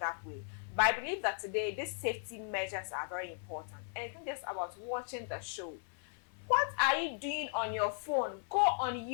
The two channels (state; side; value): silent; right; 53 dB below the other